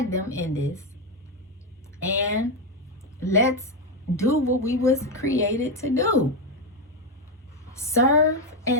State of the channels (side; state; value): both; normal; correlation 0.08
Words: them in this. And let's do what we was created to do. Serve